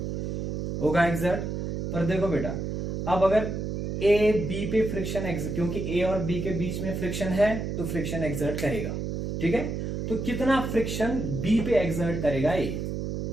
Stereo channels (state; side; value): noise; right; hum, 3 dB below the sound